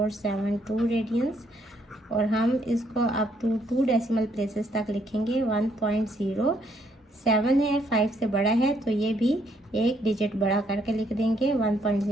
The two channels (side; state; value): both; normal; correlation 0.71